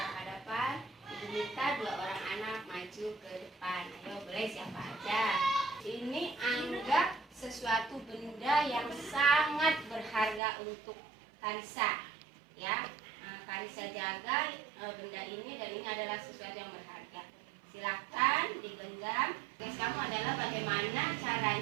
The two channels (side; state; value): left; drops out; at 10.4 s